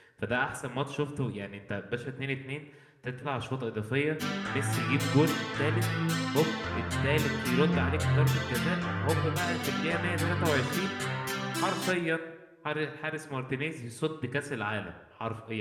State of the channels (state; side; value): identical; both; correlation 1.00